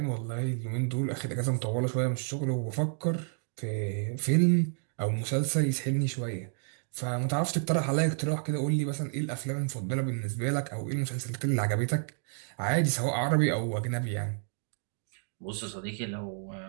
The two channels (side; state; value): left; silent; 58 dB below the other